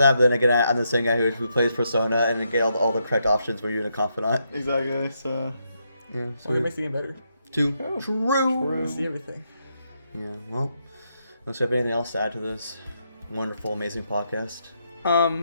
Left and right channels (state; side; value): inverted; both; correlation -0.80